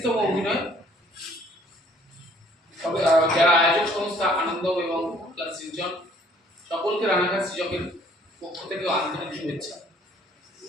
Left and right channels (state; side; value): normal; both; correlation 0.59